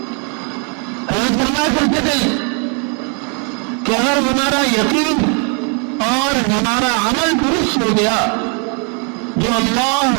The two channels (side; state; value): left; quieter; 38.2 dB